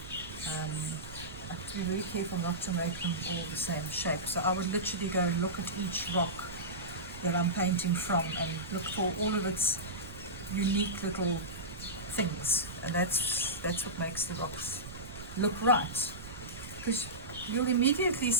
I have to be very careful not to make them all the same shape. So I would literally go and look at each rock that I'm painting from and look for all of its unique little things, and that's what makes the rocks look right, because you'll immediately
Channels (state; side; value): noise; right; rumble, 12 dB below the sound